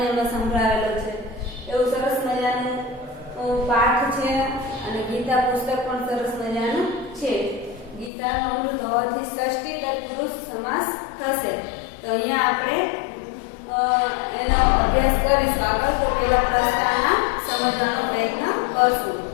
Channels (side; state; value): right; drops out; at 8.1 s